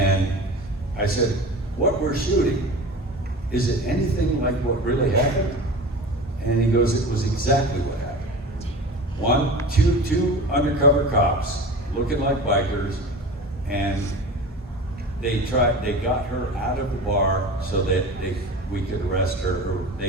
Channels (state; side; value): normal; both; correlation 0.34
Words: I said, what we're shooting, is it anything like what really happened? And he goes, it was exactly what happened. Two undercover cops looking like bikers, and they got her out of the bar so that we could arrest her, or